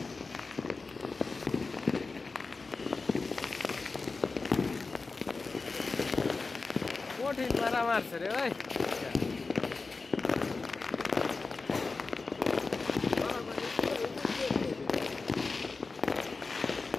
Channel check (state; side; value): quieter; right; 4.0 dB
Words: কঠিন মারা মারছে রে ভাই